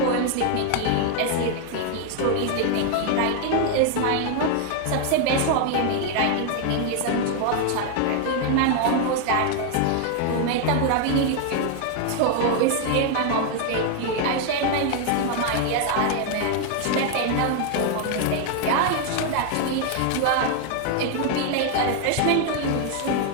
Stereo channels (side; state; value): both; different; correlation 0.00